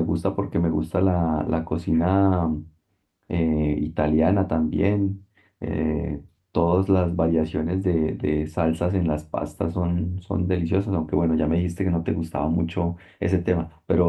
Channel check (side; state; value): both; identical; correlation 1.00